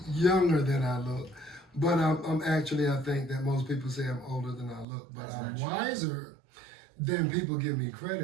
younger than I look. But I'm actually, I think that most people say I'm older than I look, but I'm wiser than people give me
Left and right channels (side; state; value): left; drops out; at 4.9 s